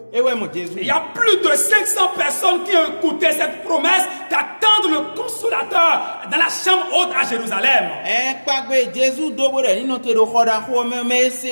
y a plus de 500 personnes qui ont écouté cette promesse d'attendre le Consolateur dans la chambre haute à Jérusalem.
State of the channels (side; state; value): both; inverted; correlation -1.00